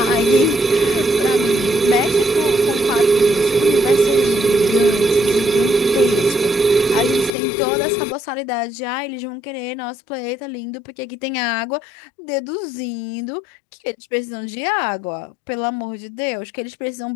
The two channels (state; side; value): drops out; right; at 7.3 s